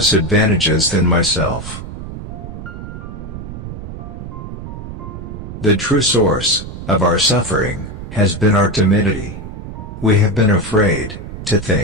advantages than myself. The true source of our suffering has been our timidity. We have been afraid to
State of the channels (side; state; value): right; noise; rumble, 10 dB below the sound